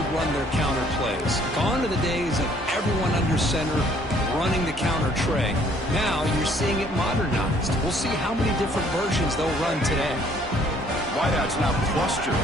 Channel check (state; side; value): normal; both; correlation 0.61